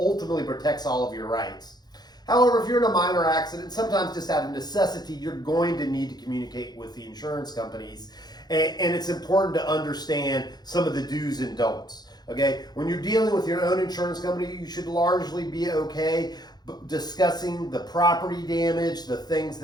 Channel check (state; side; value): late; right; 0.20 ms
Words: protects all of your rights. However, if you're in a minor accident, sometimes just out of necessity, you're going to need to communicate with the insurance companies, and it's important to understand some of the do's and don'ts. Okay, when you're dealing with your own insurance company, you should largely be okay discussing the property damage, the things